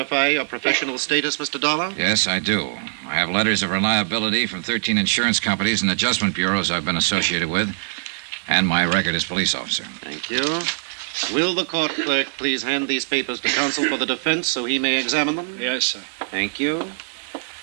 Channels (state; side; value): silent; left; 63 dB below the other